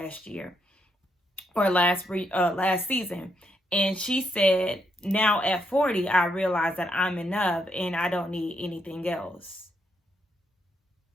year or last season. And she said, now at 40, I realize that I'm enough and I don't need anything else.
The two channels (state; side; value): normal; both; correlation 0.78